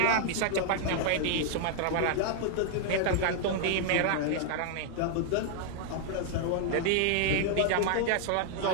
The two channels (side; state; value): both; different; correlation 0.00